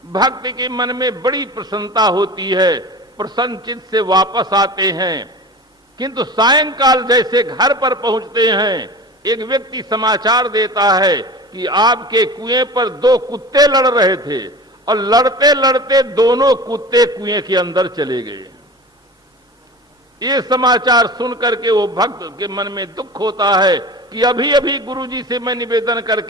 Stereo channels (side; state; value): both; normal; correlation 0.36